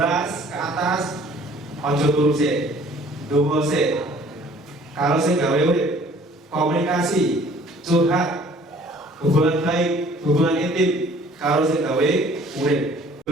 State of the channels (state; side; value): normal; both; correlation 0.54